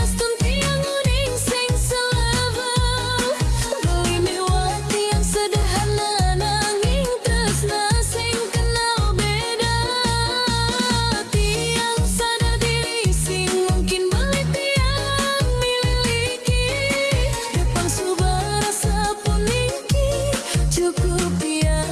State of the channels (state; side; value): identical; both; correlation 1.00